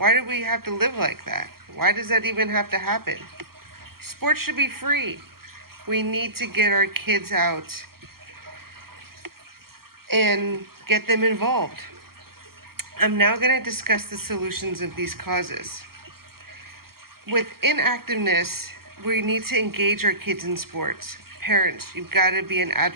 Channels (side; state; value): left; late; 0.94 ms